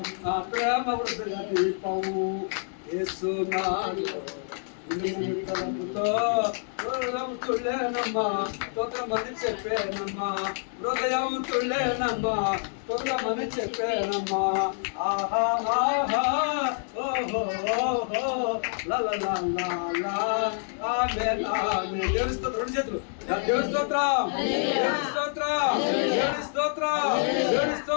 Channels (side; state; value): right; silent; 60 dB below the other